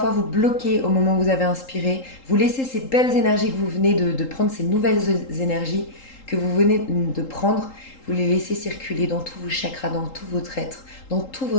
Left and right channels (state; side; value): late; right; 3.8 ms